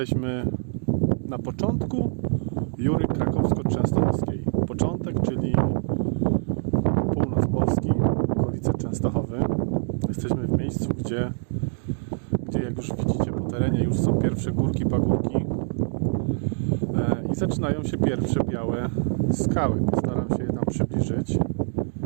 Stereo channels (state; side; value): silent; left; digital silence